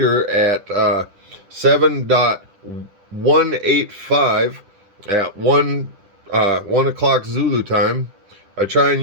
at 7.185 at 1 o'clock Zulu time. I try and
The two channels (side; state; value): left; late; 10 ms